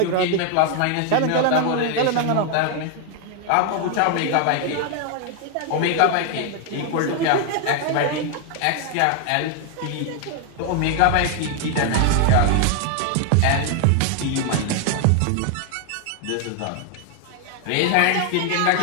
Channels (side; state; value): both; different; correlation 0.00